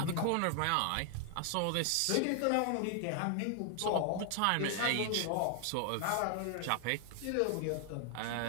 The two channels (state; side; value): different; both; correlation 0.00